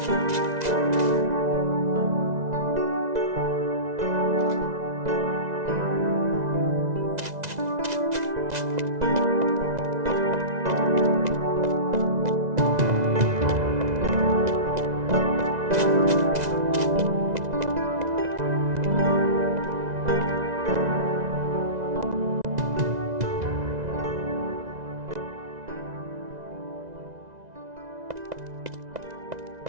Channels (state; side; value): late; left; 2.0 ms